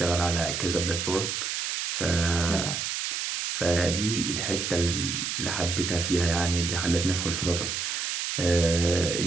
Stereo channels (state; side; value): noise; right; hiss, 2 dB below the sound